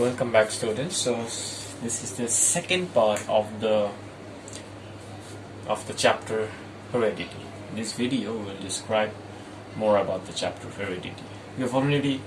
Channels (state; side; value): identical; both; correlation 1.00